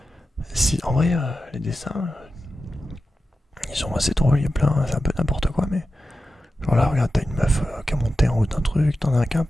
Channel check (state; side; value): normal; both; correlation 0.92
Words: En vrai, les dessins, ils sont assez drôles, il y a plein, c'est un peu n'importe quoi, mais... Genre là, regarde, t'as une meuf qui a monté en haut d'un truc, t'en as un qui a un